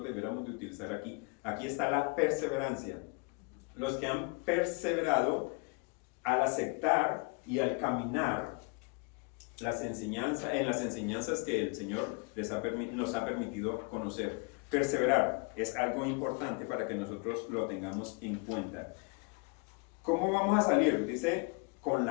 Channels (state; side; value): quieter; right; 32.4 dB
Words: debiéramos de utilizar aquí. Aquí está la perseverancia. Los que han perseverado al aceptar y al caminar en las enseñanzas que el Señor nos ha permitido conocer. Perseverar es algo importante para que nosotros lo tengamos en cuenta. ¿Cómo vamos a salir? Dice, con